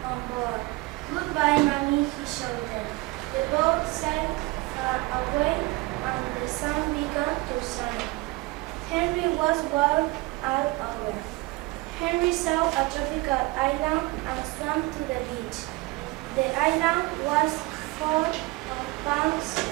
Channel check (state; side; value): quieter; left; 22.5 dB